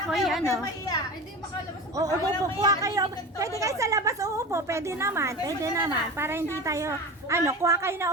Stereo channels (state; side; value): normal; both; correlation 0.31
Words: ako'y ano. Hindi makalabas. Oo, kuha kayo. Pwede kayo sa labas uupo. Pwede naman. Pwede naman. Para hindi tayo, ano, kuha kayo